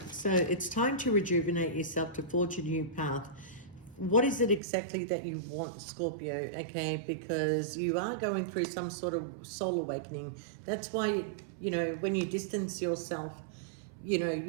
so it's time to rejuvenate yourself, to forge a new path. What is it exactly that you want, Scorpio, okay? Because you are going through some sort of soul awakening. That's why, you know, when you distance yourself, you know,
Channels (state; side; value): drops out; left; at 4.6 s